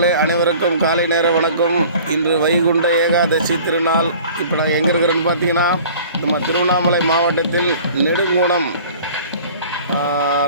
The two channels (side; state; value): both; inverted; correlation -0.47